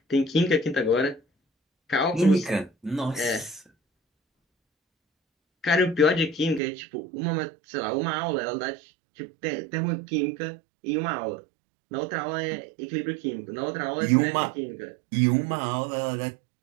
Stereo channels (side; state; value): left; drops out; at 6.6 s